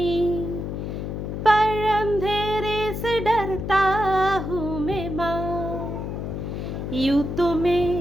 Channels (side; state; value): left; noise; hum, 5 dB below the sound